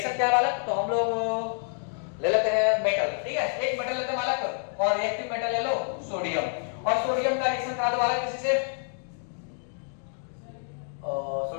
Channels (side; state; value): right; silent; 59 dB below the other